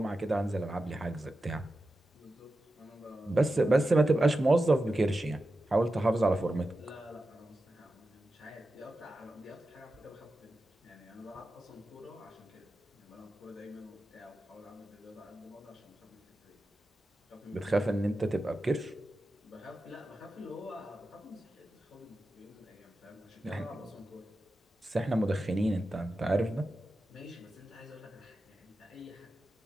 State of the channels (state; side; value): normal; both; correlation 0.92